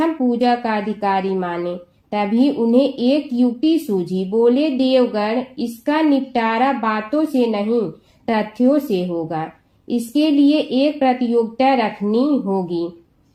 पूजा का अधिकारी माने। तभी उन्हें एक युक्ति सूझी। बोले, देवगण, इसका निपटारा बातों से नहीं तथ्यों से होगा। इसके लिए एक प्रतियोगिता रखनी होगी,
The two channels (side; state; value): both; identical; correlation 1.00